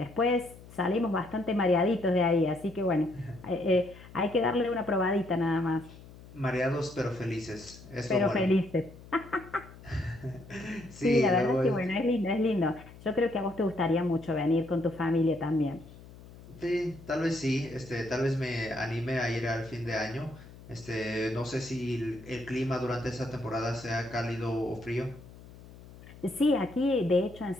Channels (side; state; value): left; noise; hum, 19 dB below the sound